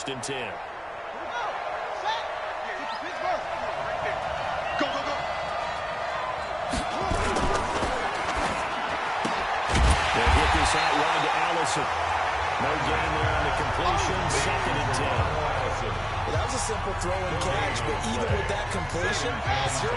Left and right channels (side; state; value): both; identical; correlation 1.00